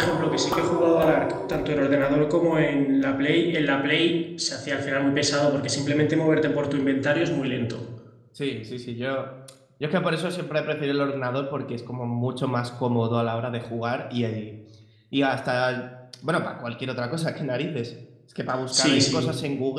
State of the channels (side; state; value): both; identical; correlation 1.00